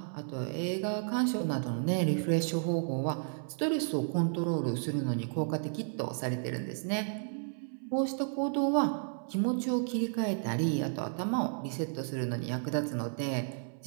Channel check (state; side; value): silent; left; 56 dB below the other